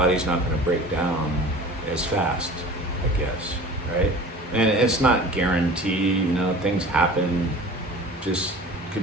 not going to break down as fast, I guess, right? And it's not guaranteed, you know, things happen, just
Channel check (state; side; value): normal; both; correlation 0.41